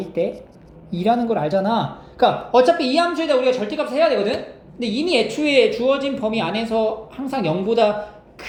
때 2라는 걸 알잖아. 그러니까 어차피 이 함수에다 우리가 절대값을 해야 되거든. 근데 이미 애초에 주어진 범위 안에서 항상 0보다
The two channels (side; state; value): both; identical; correlation 1.00